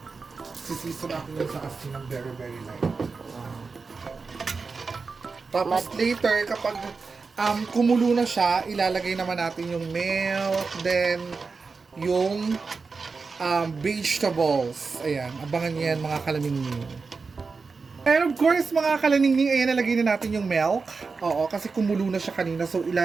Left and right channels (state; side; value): quieter; left; 4.6 dB